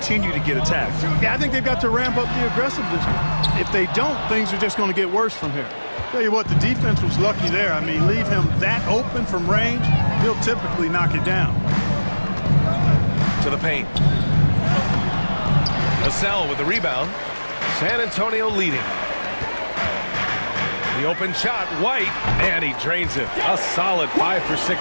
to get attacked. Yeah, I think they've got to ramp up the aggressiveness. If they don't, things are just going to get worse from here. Tell you what, the defense was lucky there. I mean, leave him that open from range, he'll typically knock it down. To the paint. Vassell with the rebound. San Antonio leading. The open shot, White, and he drains it. A solid 5 for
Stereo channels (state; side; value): inverted; both; correlation -1.00